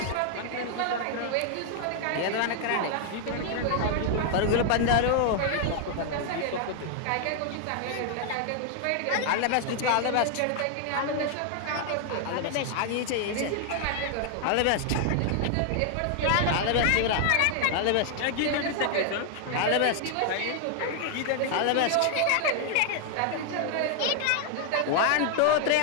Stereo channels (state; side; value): different; both; correlation 0.00